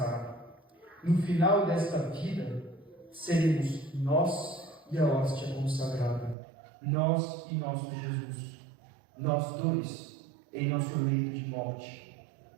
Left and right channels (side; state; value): left; drops out; at 6.4 s